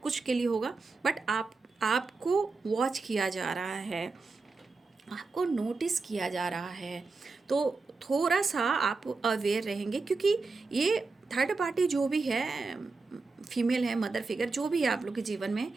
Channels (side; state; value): left; quieter; 4.0 dB